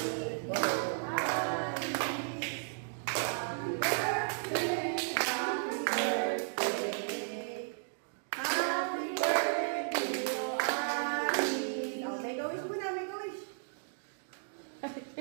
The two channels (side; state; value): left; silent; digital silence